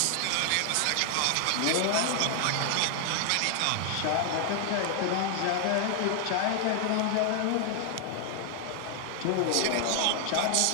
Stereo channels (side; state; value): both; different; correlation 0.00